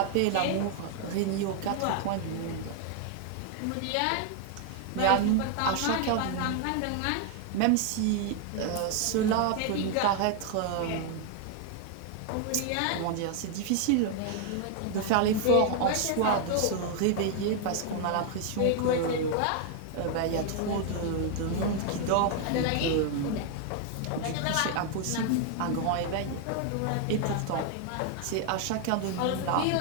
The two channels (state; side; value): different; both; correlation 0.00